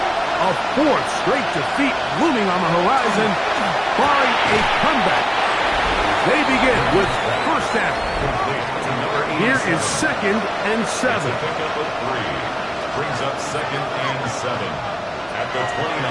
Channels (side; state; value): both; identical; correlation 1.00